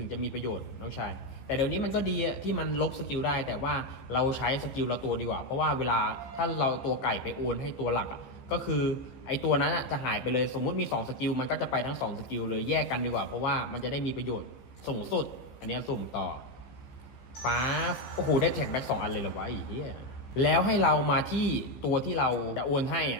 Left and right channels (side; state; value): right; late; 15 ms